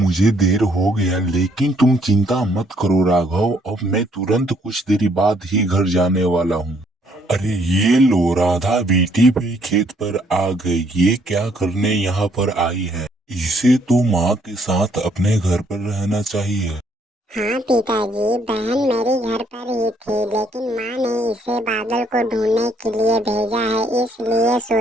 देर हो गया। लेकिन तुम चिंता मत करो राघव, अब मैं तुरंत कुछ देर बाद ही घर जाने वाला हूँ। अरे ये लो, राधा बेटी भी खेत पर आ गई। ये क्या करने यहाँ पर आई है? इसे तो माँ के साथ अपने घर पर रहना चाहिए। हाँ पिताजी, बहन मेरी घर पर ही थी, लेकिन माँ ने इसे बादल को ढूंढने के लिए भेजा है। इसलिए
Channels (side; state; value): both; normal; correlation 0.67